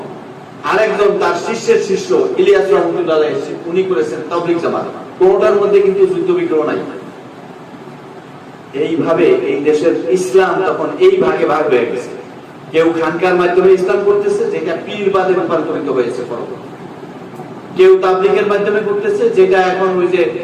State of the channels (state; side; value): identical; both; correlation 1.00